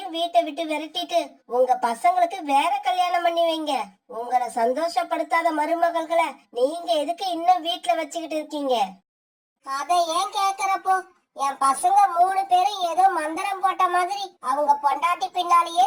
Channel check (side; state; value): both; identical; correlation 1.00